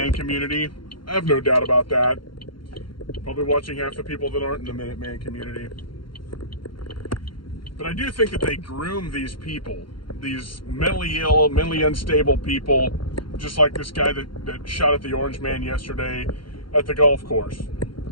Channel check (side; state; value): right; late; 0.73 ms